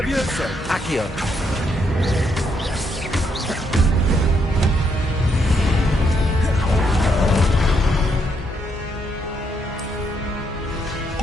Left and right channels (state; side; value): normal; both; correlation 0.75